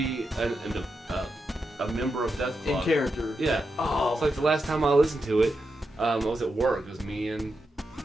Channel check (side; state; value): both; normal; correlation 0.87